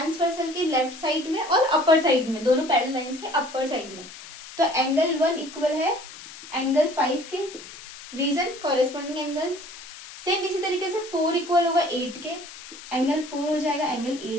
के लेफ्ट साइड में और अपर साइड में, दोनों पैरेलल लाइंस के अपर साइड में। तो एंगल 1 इक्वल है एंगल 5 के, रीजन कॉरेस्पॉन्डिंग एंगल्स। सेम इसी तरीके से 4 इक्वल होगा 8 के, एंगल 4 हो जाएगा एंगल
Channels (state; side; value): noise; left; hiss, 15 dB below the sound